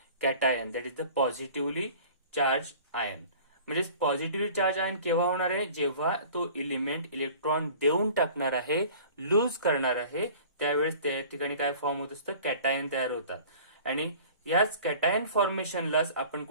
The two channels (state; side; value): inverted; both; correlation -0.45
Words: cation, that is the positively charged ion. म्हणजे positively charge ion केव्हा होणार आहे, जेव्हा तो element electron देऊन टाकणार आहे, loose करणार आहे, त्यावेळेस त्या ठिकाणी काय फॉर्म होत असतं, कॅटायन तयार होतात. आणि याच कॅटायन फॉर्मेशनलाच आपण